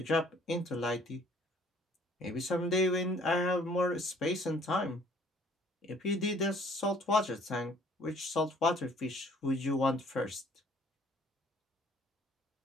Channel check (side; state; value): both; normal; correlation 0.58